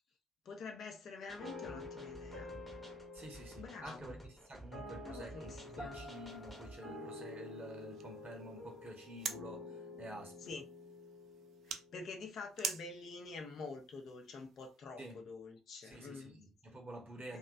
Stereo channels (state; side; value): normal; both; correlation 0.58